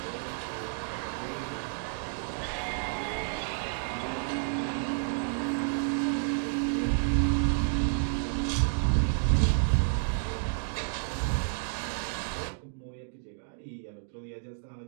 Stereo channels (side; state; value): left; silent; digital silence